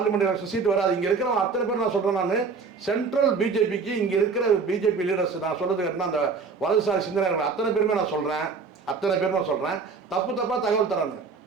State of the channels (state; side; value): quieter; left; 4.9 dB